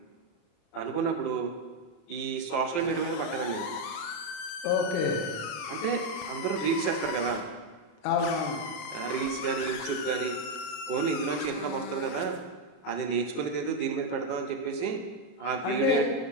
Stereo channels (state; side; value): late; right; 34 ms